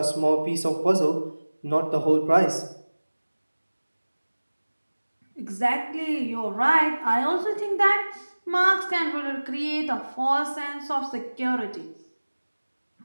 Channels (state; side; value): inverted; both; correlation -1.00